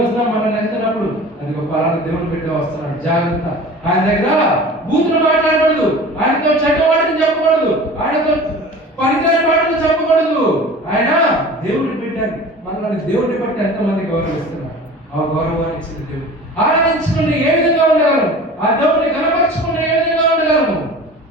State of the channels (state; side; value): normal; both; correlation 0.40